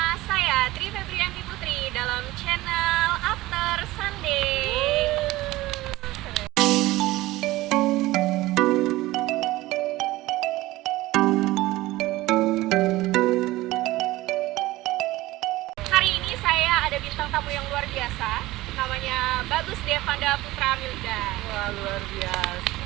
saya Tri Febrianti Putri dalam channel After Sunday. Hari ini saya ada bintang tamu yang luar biasa, namanya Bagus Devanda Putra Milda. Wah, luar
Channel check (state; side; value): quieter; left; 18.2 dB